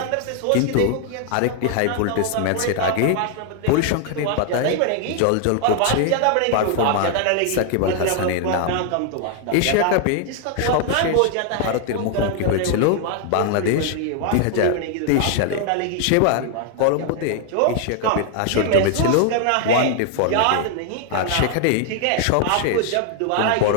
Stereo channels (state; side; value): different; both; correlation 0.00